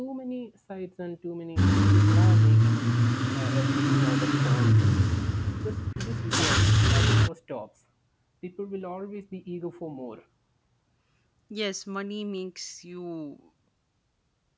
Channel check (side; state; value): both; identical; correlation 1.00